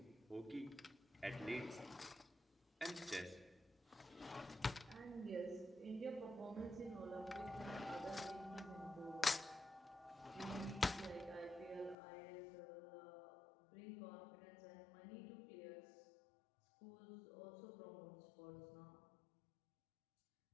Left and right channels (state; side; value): drops out; right; at 12.0 s